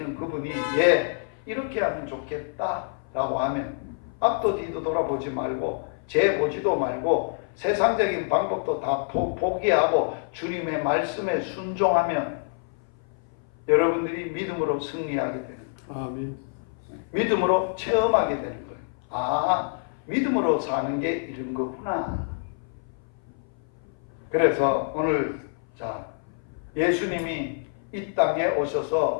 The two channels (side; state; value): right; silent; 57 dB below the other